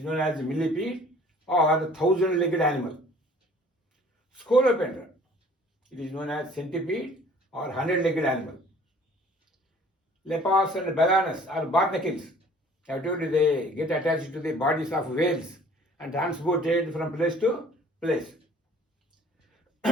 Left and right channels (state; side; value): normal; both; correlation 0.53